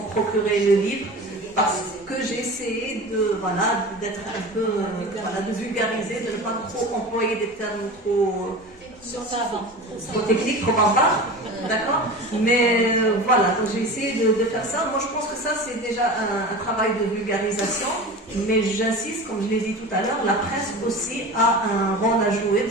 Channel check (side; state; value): both; normal; correlation 0.33